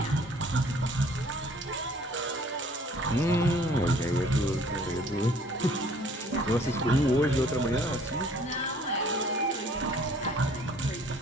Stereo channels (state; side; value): normal; both; correlation 0.56